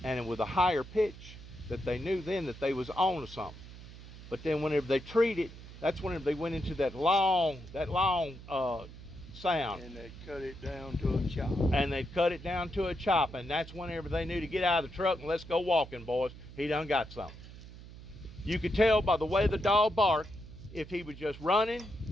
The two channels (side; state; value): right; noise; hum, 15 dB below the sound